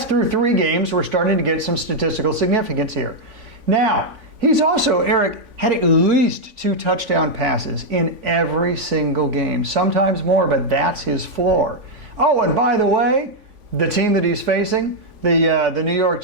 through 3 games. We're starting to get some statistical significance here. Now, he's also, Eric, had at least 2 touchdown passes in every single game. Sometimes more, but that's his floor. Oh, and by the way, the team that he's facing, the New York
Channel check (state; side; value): late; left; 3.5 ms